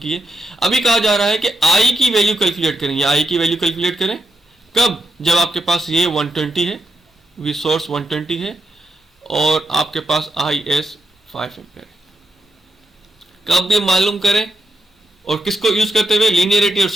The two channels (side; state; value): both; normal; correlation 0.83